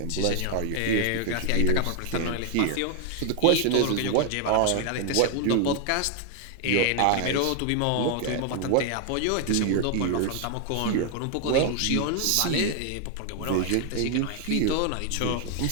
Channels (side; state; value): both; different; correlation 0.00